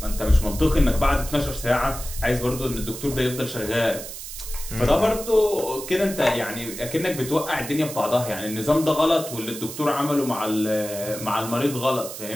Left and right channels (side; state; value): right; noise; hiss, 10 dB below the sound